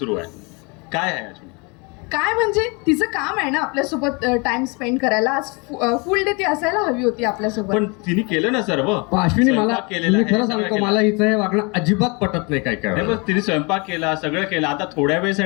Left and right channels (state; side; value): quieter; right; 30.0 dB